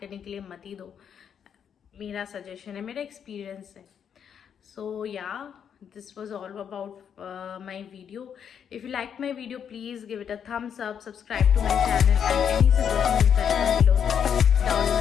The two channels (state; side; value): quieter; right; 8.0 dB